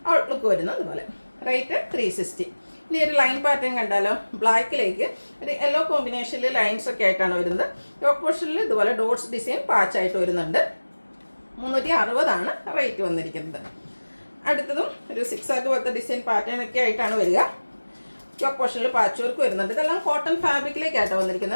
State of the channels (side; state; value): both; inverted; correlation -1.00